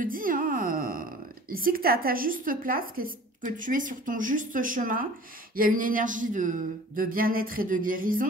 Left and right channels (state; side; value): normal; both; correlation 0.45